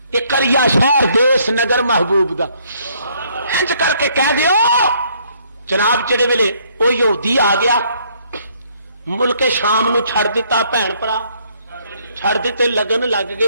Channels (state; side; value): inverted; both; correlation -0.66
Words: کہ کریا شہر دیس نگر محبوب دا انج کر کے کہہ دیو جناب جڑے ویلے وہ یہودی آ گیا ملک شام نو چھڑ دیتا بھن بھرا چھڑ دیتے لگن لگ